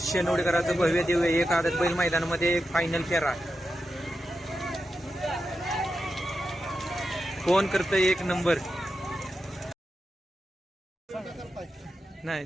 भव्य दिव्य एक आदत बैल मैदानामध्ये फायनल फेरा. कोण करतं एक नंबर? नाही,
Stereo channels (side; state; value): both; normal; correlation 0.89